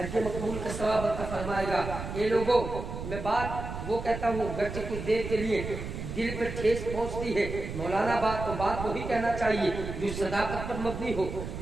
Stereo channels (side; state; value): right; noise; rumble, 7 dB below the sound